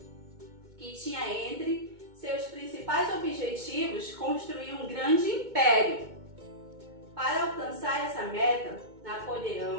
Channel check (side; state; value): left; late; 2.2 ms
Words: que tinha entre seus principais objetivos construir um grande império. Para alcançar essa meta,